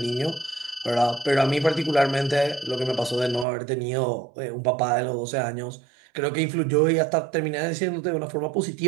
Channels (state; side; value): drops out; left; at 3.5 s